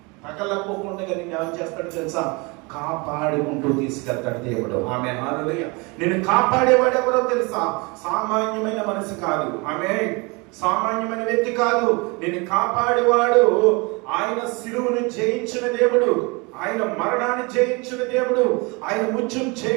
తగలకపోకుండా నేను ఏం చేస్తాడు తెలుసా? కాపాడుకుంటూ తీసుకెళ్తాడు దేవుడు. ఆమె హల్లెలూయా. నేను కాపాడేవాడు ఎవరో తెలుసా? సామాన్యమైన మనిషి కాదు. ఆమె సామాన్యమైన వ్యక్తి కాదు. నేను కాపాడేవాడు ఆయన శిలువను జయించిన దేవుడు, ఆయన మరణాన్ని జయించిన దేవుడు, ఆయన ముత్యం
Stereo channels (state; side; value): quieter; left; 28.0 dB